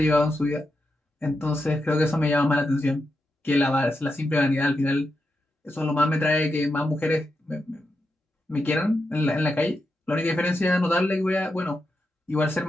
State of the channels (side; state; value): both; normal; correlation 0.86